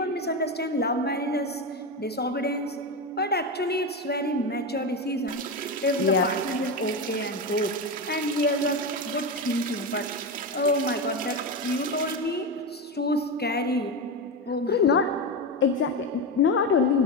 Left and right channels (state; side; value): normal; both; correlation 0.16